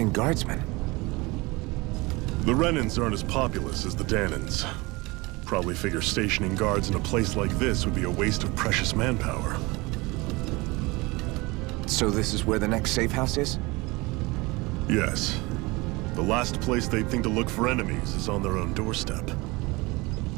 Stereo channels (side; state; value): left; quieter; 23.8 dB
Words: guardsmen. The Renins aren't as populous as the Danins. Probably figure stationing guards in a place like this would be a waste of precious manpower. So this is where the next safe house is? Yes. The last place they'd think to look for enemies is on their own doorstep.